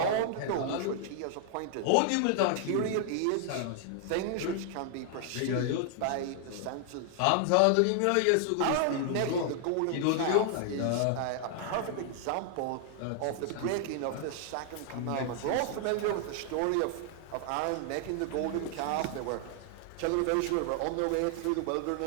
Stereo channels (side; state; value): both; different; correlation 0.00